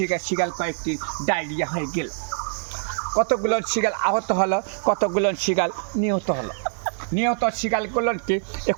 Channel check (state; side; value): silent; left; 56 dB below the other